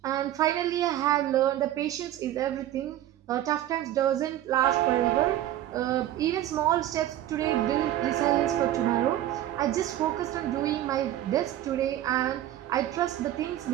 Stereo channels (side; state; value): left; quieter; 12.9 dB